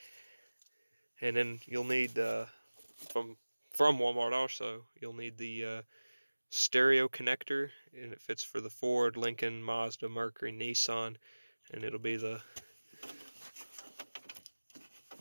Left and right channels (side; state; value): both; inverted; correlation -1.00